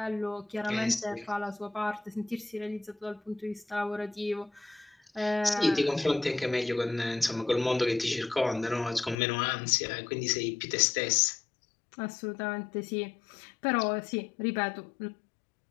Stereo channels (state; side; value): drops out; right; at 9.2 s